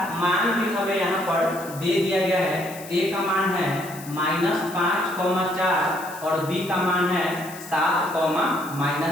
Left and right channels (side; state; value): left; noise; hiss, 16 dB below the sound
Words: मान भी हमें यहाँ पर दे दिया गया है। A का मान है -5,4 और B का मान है